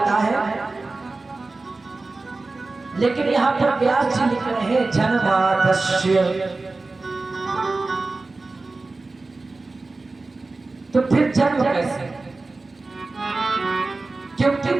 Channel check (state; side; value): quieter; left; 3.5 dB